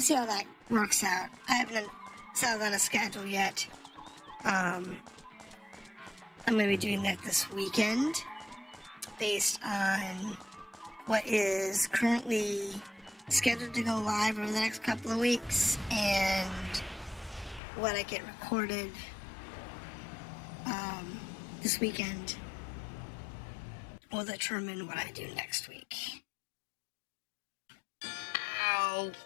see how that works out. I haven't settled on a schedule yet. I'm going to be doing that this weekend, based on what is currently scheduled to go live over the next couple of weeks, and what I get recorded this weekend will determine what I do next week. Ow.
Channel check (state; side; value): drops out; right; at 17.6 s